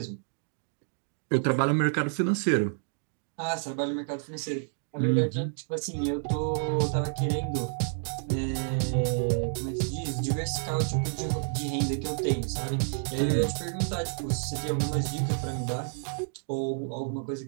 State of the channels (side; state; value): left; silent; digital silence